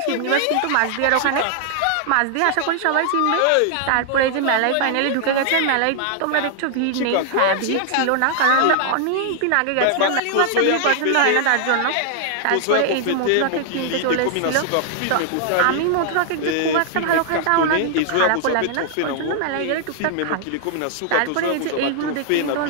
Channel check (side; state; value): both; different; correlation -0.01